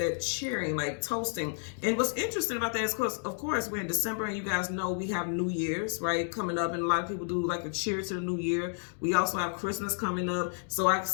cheering, like toasting. And what's interesting about that is, of course, we're in December, and you guys know we have New Year's, right, coming up, and a lot of people do like a cheer to the new year. We also have Christmas coming up, so I can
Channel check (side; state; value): right; silent; 57 dB below the other